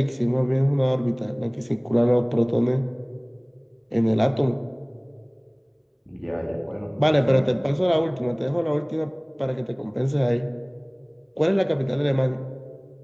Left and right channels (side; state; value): both; identical; correlation 1.00